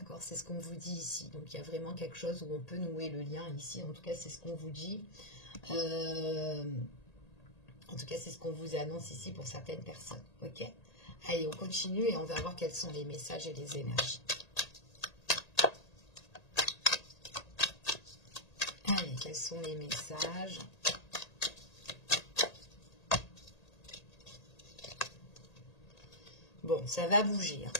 C'est ce qu'on vous dit ici. Donc, il y a vraiment quelque chose où on peut nouer le lien ici. En tout cas, c'est ce qu'on vous dit. En tout cas, c'est ce qu'on vous annonce ici pour certaines personnes. Ok? Allez, on continue et on va voir quels sont les messages et les énergies. Allez, quels sont les messages? Bon, ça va bouger. Hein.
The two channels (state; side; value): late; right; 1.8 ms